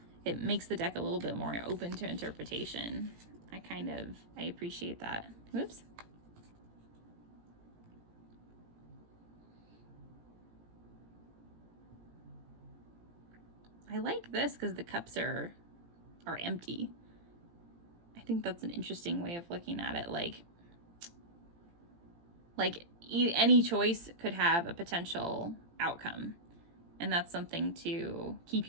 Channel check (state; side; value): late; left; 18 ms